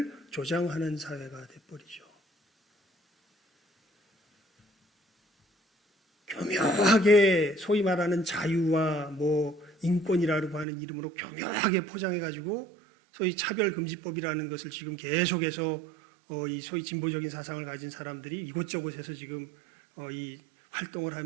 조장하는 사회가 돼버리죠. 교묘하게 소위 말하는 자유와 뭐 인권이라고 하는 이름으로 교묘하게 포장해가지고 소위 차별금지법이라는 것을 지금 계속해서 이 소위 진보적인 사상을 가진 사람들이 이곳저곳에서 지금 이 활동을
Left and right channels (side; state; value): left; drops out; at 10.7 s